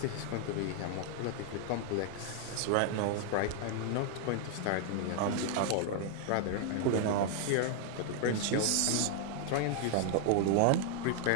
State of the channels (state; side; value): different; both; correlation 0.00